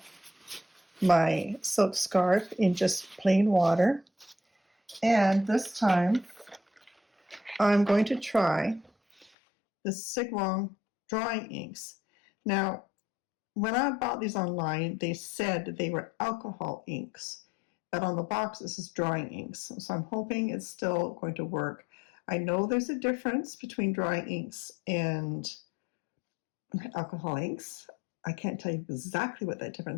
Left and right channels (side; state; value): right; drops out; at 9.3 s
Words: my silk scarf in just plain water. And this time I'm going to try the Sig Wong drawing inks. Now, when I bought these online, they said they were alcohol inks. but on the box this is drying inks, so I'm hoping it's still going to work. I know there's a difference between drying inks and alcohol inks. I can't tell you exactly what that